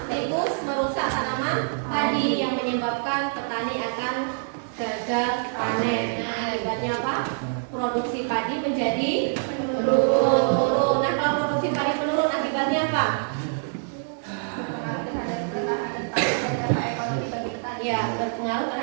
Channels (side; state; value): left; silent; digital silence